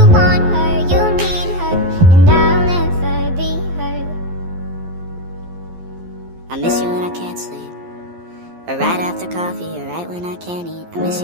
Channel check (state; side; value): late; left; 12 ms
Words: want her, you need her, and I'll never be her. I miss you when I can't sleep, or right after coffee, or right when I can't eat. I miss